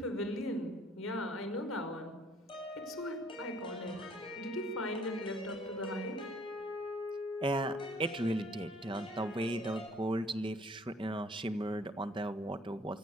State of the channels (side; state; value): both; normal; correlation 0.59